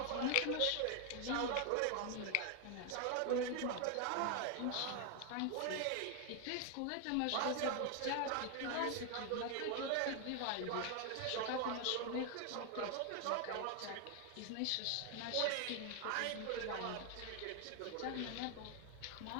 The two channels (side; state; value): both; different; correlation 0.00